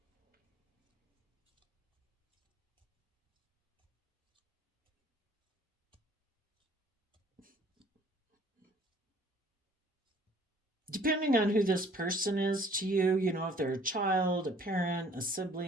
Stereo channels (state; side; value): normal; both; correlation 0.56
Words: Depending on who this person is to you, if they're a child, a parent, a